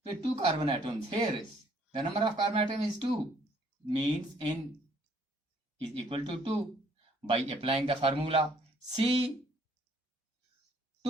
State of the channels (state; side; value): normal; both; correlation 0.63